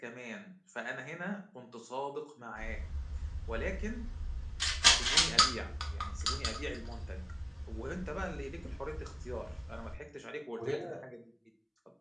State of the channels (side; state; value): both; identical; correlation 1.00